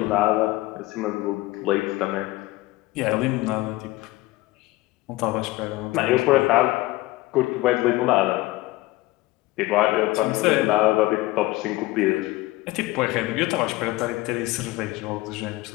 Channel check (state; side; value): quieter; right; 19.1 dB